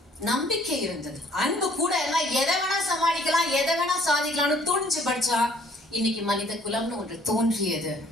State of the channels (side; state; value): both; normal; correlation 0.60